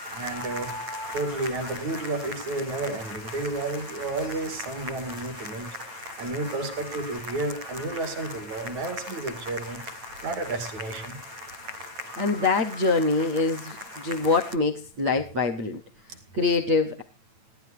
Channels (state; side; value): late; left; 9.0 ms